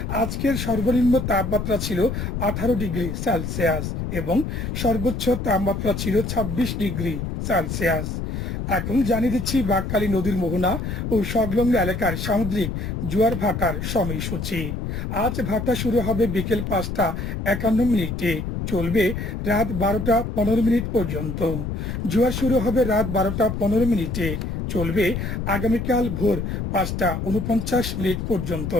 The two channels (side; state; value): left; noise; rumble, 4 dB below the sound